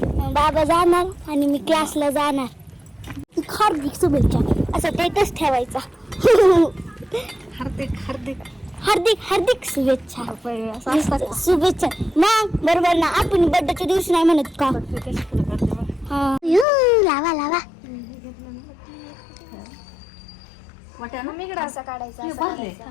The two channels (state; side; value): drops out; right; at 16.7 s